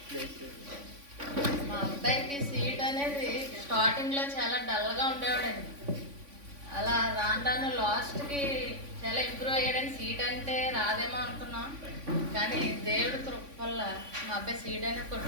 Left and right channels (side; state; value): left; late; 3.5 ms